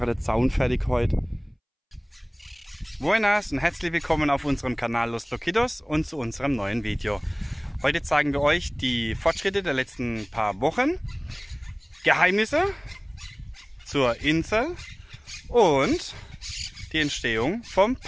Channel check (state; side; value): identical; both; correlation 1.00